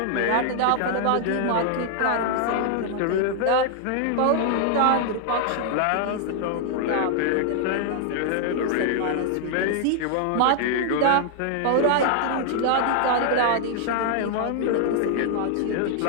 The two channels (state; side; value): different; both; correlation 0.00